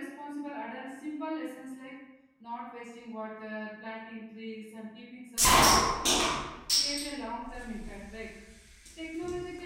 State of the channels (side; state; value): both; identical; correlation 1.00